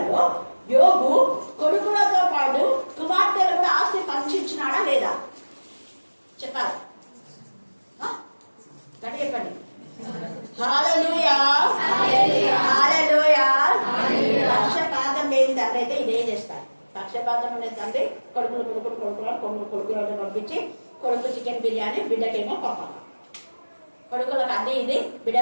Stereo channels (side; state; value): both; inverted; correlation -1.00